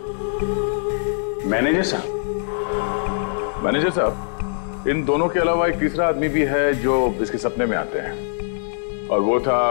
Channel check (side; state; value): right; silent; digital silence